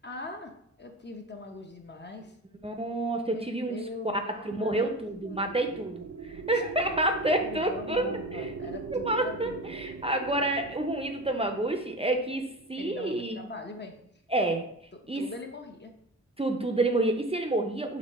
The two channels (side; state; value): both; normal; correlation 0.30